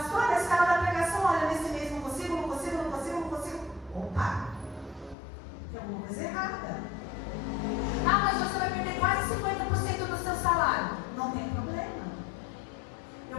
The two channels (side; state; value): right; drops out; at 5.2 s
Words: a escala da pregação, olha, nesse mês não consigo. Opa! Tem alguma coisa errada. Mas você vai perder quase 50% do seu salário. Não tem problema.